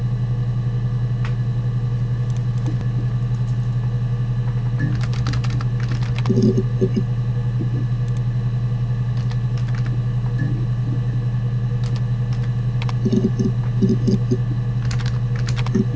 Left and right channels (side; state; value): both; identical; correlation 1.00